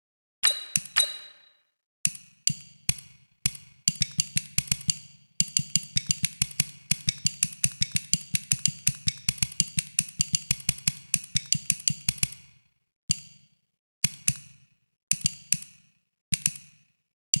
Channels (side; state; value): both; inverted; correlation -1.00